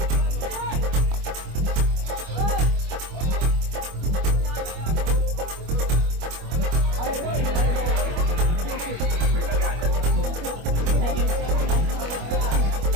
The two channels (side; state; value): left; late; 25 ms